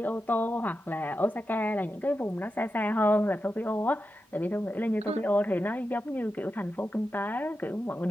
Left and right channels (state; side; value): normal; both; correlation 0.90